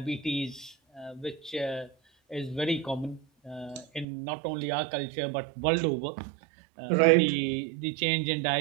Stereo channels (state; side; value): drops out; left; at 4.0 s